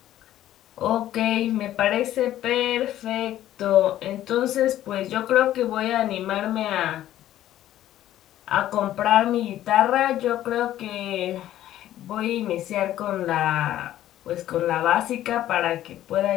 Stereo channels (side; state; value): right; quieter; 13.0 dB